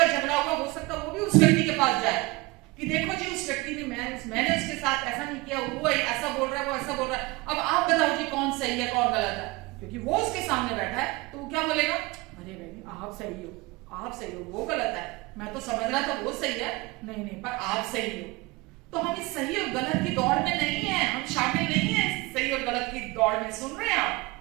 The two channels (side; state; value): left; quieter; 23.1 dB